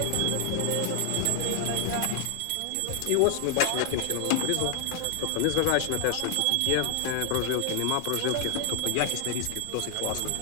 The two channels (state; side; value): different; both; correlation -0.01